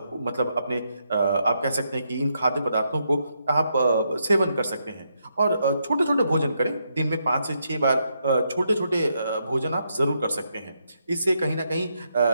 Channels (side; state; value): both; inverted; correlation -0.80